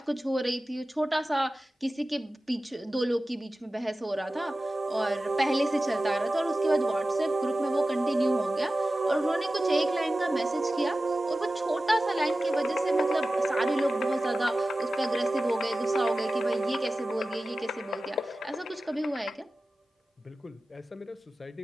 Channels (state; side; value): normal; both; correlation 0.95